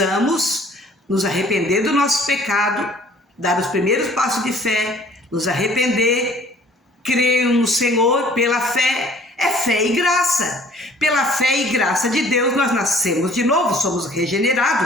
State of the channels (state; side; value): normal; both; correlation 0.54